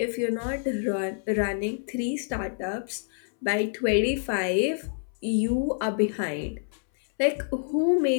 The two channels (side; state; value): right; silent; 60 dB below the other